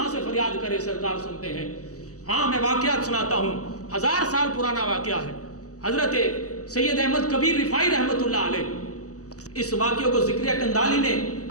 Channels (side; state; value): right; late; 0.66 ms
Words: سے فریاد کرے سرکار سنتے ہیں۔ ہاں میں واقعات سناتا ہوں، 1000 سال پرانا واقعہ ہے۔ حضرت سید احمد کبیر رفاعی رحمۃ اللہ علیہ، اس واقعے کو ذکریہ کندالی نے